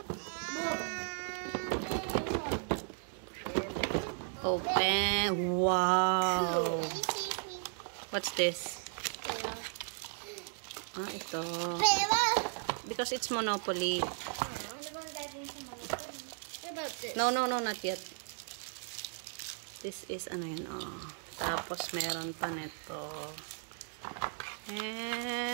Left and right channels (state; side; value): silent; left; 54 dB below the other